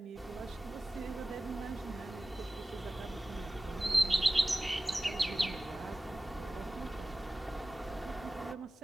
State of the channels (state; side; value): normal; both; correlation 0.96